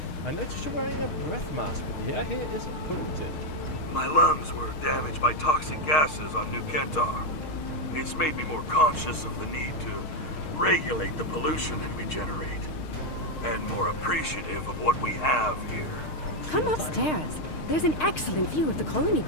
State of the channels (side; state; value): right; late; 6.5 ms